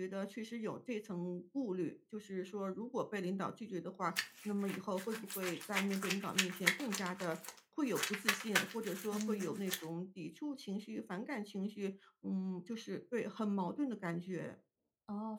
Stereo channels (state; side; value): identical; both; correlation 1.00